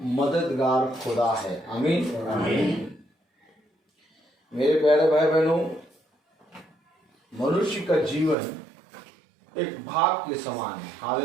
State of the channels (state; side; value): drops out; left; at 8.3 s